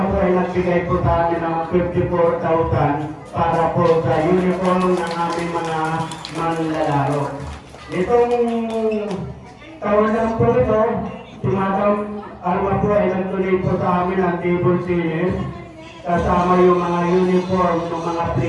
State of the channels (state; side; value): identical; both; correlation 1.00